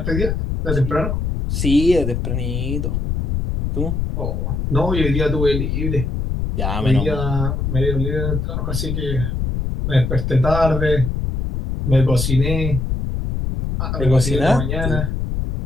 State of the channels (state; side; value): noise; left; rumble, 2 dB below the sound